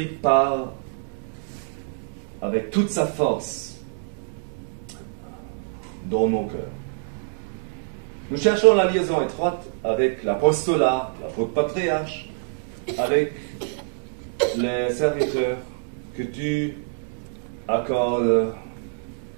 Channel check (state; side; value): silent; left; digital silence